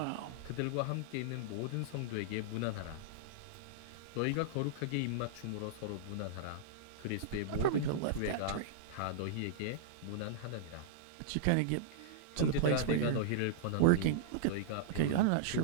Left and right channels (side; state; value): both; different; correlation -0.02